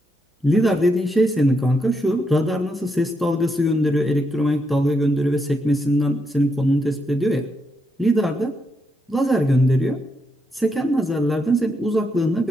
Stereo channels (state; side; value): normal; both; correlation 0.81